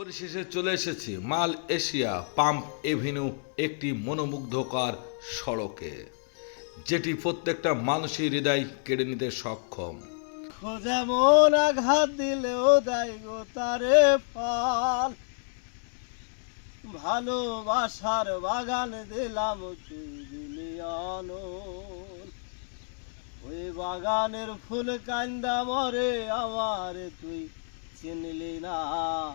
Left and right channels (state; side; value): silent; right; digital silence